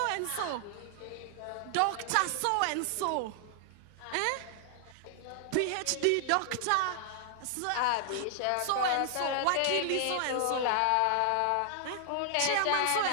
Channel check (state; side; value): different; both; correlation 0.00